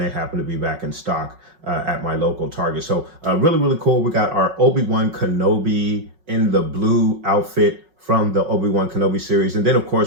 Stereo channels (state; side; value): late; left; 5.4 ms